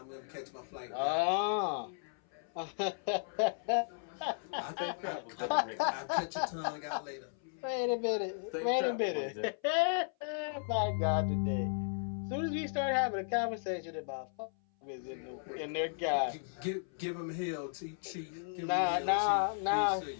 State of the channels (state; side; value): silent; right; 54 dB below the other